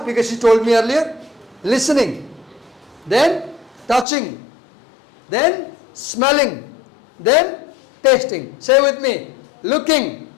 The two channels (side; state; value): right; drops out; at 4.0 s